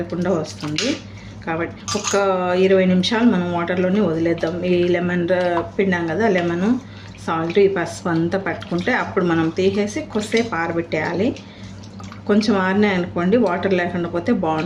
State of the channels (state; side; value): identical; both; correlation 1.00